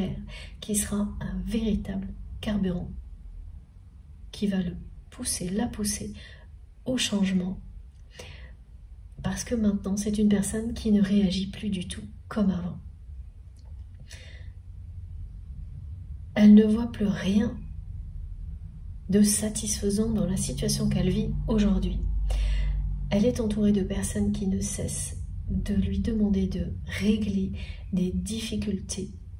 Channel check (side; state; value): both; identical; correlation 1.00